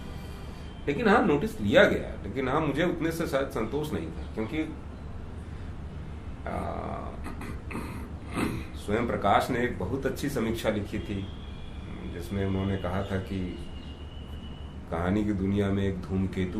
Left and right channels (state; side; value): identical; both; correlation 1.00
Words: लेकिन हाँ, नोटिस लिया गया। लेकिन हाँ, मुझे उतने से शायद संतोष नहीं था, क्योंकि स्वयं प्रकाश ने एक बहुत अच्छी समीक्षा लिखी थी, जिसमें उन्होंने कहा था कि कहानी की दुनिया में एक